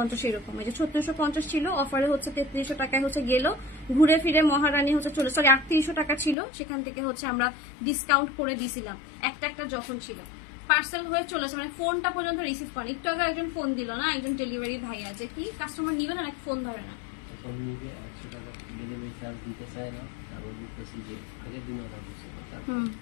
এরকম। এই যে 3650 ছিল অফারে হচ্ছে 3300 টাকায় হচ্ছে গেল, ঘুরে ফিরে মহারানী হচ্ছে চলে সরি 3800 টাকা ছিল, সেখান থেকে হচ্ছে আমরা ডিসকাউন্ট করে দিছিলাম একটা যখন ছিল। পার্সেল হয়ে চলেছে মানে ফোনটা পর্যন্ত রিসিভ করে। একটু আগে একজন ফোন দিল না, একজন ডেলিভারি ভাই আছে, কি কাস্টমার নিবে না নাকি ফোন ধরে না, দিতে চায় না।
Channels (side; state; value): right; drops out; at 6.4 s